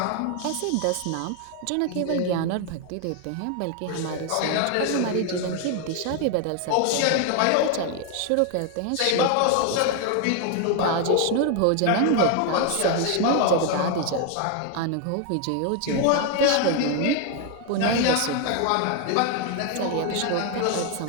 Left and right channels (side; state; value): both; different; correlation 0.01